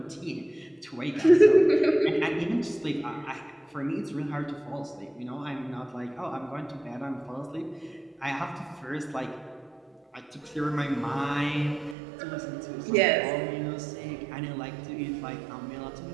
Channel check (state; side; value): drops out; left; at 12.0 s